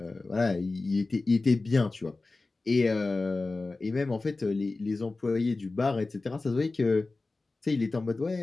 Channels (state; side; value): quieter; right; 3.4 dB